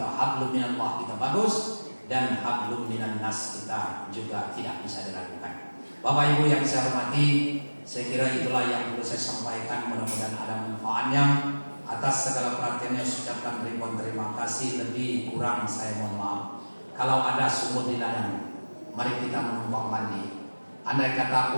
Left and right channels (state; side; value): inverted; both; correlation -1.00